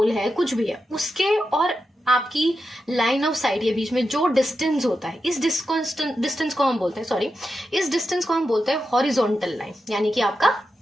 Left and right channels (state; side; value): normal; both; correlation 0.89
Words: है, कुछ भी है, उसके और आपकी लाइन ऑफ साइट के बीच में जो डिस्टेंस होता है, इस डिस्टेंस को हम बोलते हैं, सॉरी, इस डिस्टेंस को हम बोलते हैं हॉरिजॉन्टल लाइन, यानी कि आपका